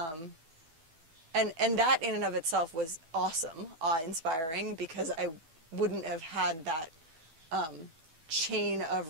that in and of itself was awesome, awe-inspiring, because I wouldn't have had that chain of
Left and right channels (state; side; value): late; left; 12 ms